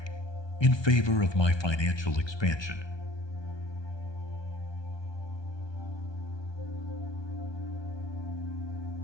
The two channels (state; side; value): late; right; 1.2 ms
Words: in favor of my financial expansion.